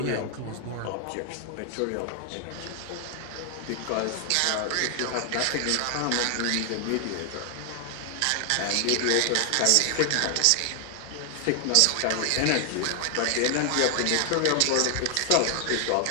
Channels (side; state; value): both; different; correlation 0.00